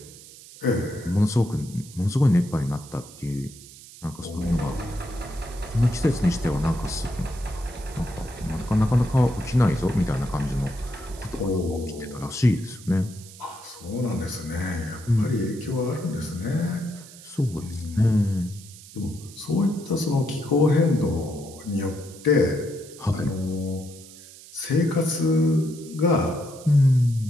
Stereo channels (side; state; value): right; noise; hiss, 19 dB below the sound